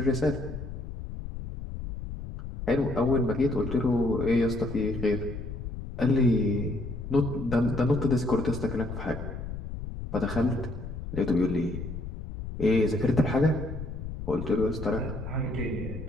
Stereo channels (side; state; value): left; noise; rumble, 8 dB below the sound